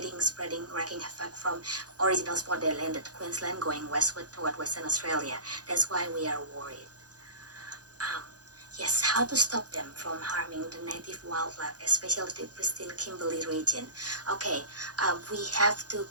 spreading, wreaking havoc from original spot they landed, Queensland, going westward toward Western Australia. That's why we are worried. Yes, how to stop them from harming the native wildlife, especially the pristine Kimberley region. Okay, we have to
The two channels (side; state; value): left; late; 0.68 ms